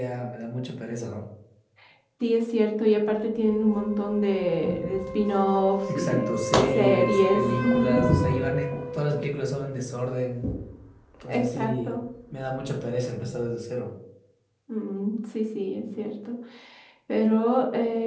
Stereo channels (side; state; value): both; identical; correlation 1.00